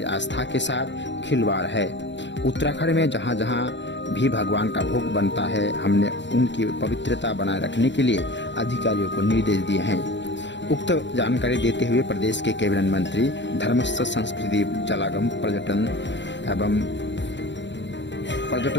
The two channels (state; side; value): late; right; 0.52 ms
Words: आस्था के साथ खिलवाड़ है। उत्तराखंड में जहां जहां भी भगवान का भोग बनता है, हमने उनकी पवित्रता बनाए रखने के लिए अधिकारियों को निर्देश दिए हैं। उक्त जानकारी देते हुए प्रदेश के कैबिनेट मंत्री धर्मस्थ संस्कृति जलागम पर्यटन